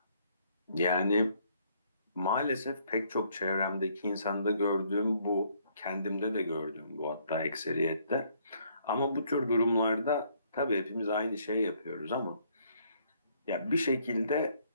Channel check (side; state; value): both; inverted; correlation -0.66